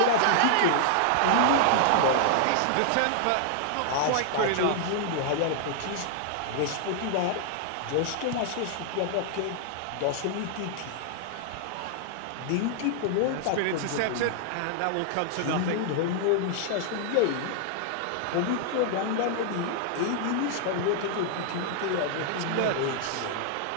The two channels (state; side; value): different; both; correlation 0.00